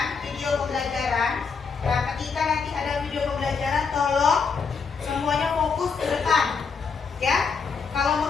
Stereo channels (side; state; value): right; quieter; 5.4 dB